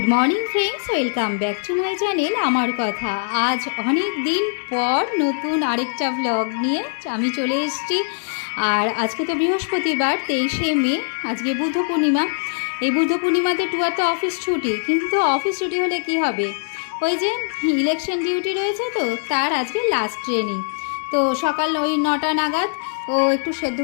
morning friends, welcome back to my channel আমার কথা। আজ অনেক দিন পর নতুন আরেকটা ব্লগ নিয়ে আমি চলে এসেছি। আর আজকে তো বৃহস্পতিবার, 23শে মে, আজকে বুদ্ধ পূর্ণিমা। এই বুদ্ধ পূর্ণিমাতে টুয়ার তো অফিস ছুটি, কিন্তু অফিস ছুটি হলে কি হবে, ওই যে ইলেকশন ডিউটি রয়েছে, তো তার আজকে লাস্ট ট্রেনিং। তো সকাল ওই 9টা নাগাদ ও একটু সেদ্ধ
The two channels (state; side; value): silent; right; 63 dB below the other